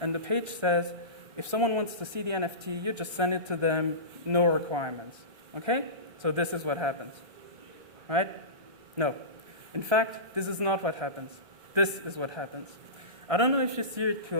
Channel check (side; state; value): left; late; 1.3 ms